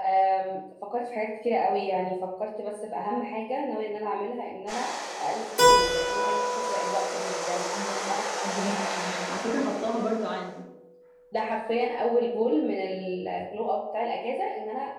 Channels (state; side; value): identical; both; correlation 1.00